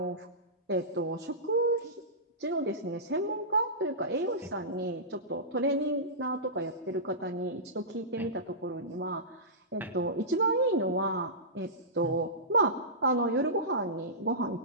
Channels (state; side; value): normal; both; correlation -0.18